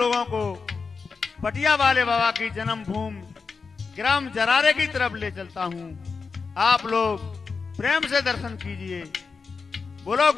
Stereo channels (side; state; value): right; quieter; 4.9 dB